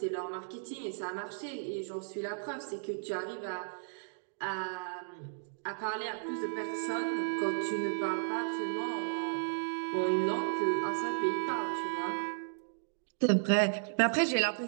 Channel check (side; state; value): left; silent; digital silence